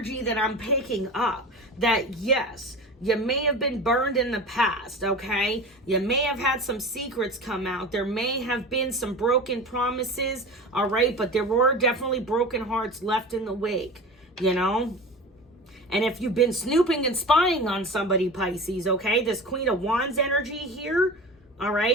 that I'm picking up. That, yes, you may have been burned in the past, okay? You may have had some secrets come out. There may have been some broken promises, all right? But there were definitely broken hearts left in the wake, you know? And if you've been snooping and spying on somebody, Pisces, okay? This Queen of Wands energy here, all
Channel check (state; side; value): normal; both; correlation 0.32